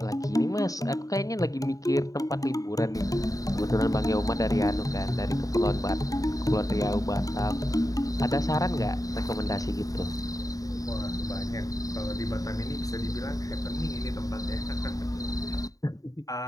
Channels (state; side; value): late; right; 0.17 ms